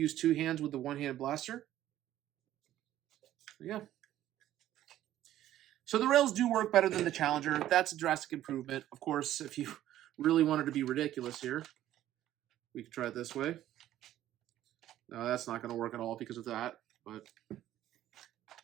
two hands with the one-handed blaster. Yeah. So the rails do work better than the Challenger. That's a drastic improvement. Of course, if you really wanted to be ridiculous here, we could try it this way. No, that's not going to work at all because of that, but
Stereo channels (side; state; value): left; quieter; 13.0 dB